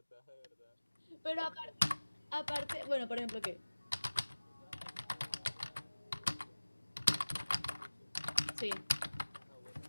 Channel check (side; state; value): both; inverted; correlation -1.00